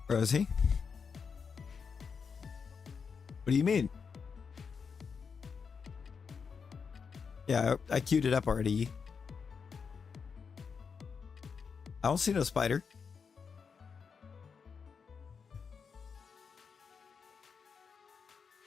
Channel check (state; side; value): quieter; right; 5.9 dB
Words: Rosie? What do you mean? Yeah, I queued it up already. I don't see no spider.